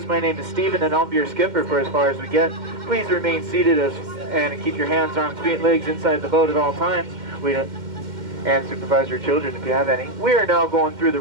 My name is Steven and I'll be your skipper for as far as we get. Please remain seated and keep your hands, arms, feet, and legs inside the boat at all times. And supervise your children if you have any. We are now going through the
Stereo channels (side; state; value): left; late; 2.1 ms